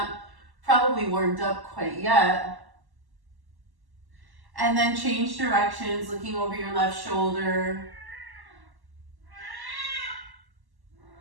probably warmed up quite yet. And then change directions, looking over your left shoulder.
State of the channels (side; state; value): left; late; 1.1 ms